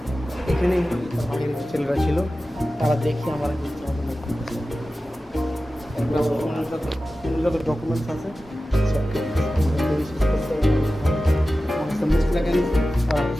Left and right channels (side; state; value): both; normal; correlation 0.95